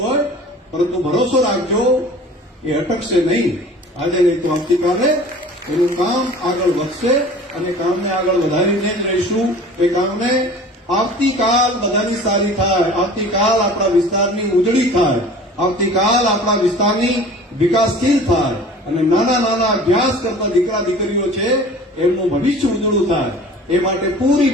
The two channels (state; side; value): normal; both; correlation 0.43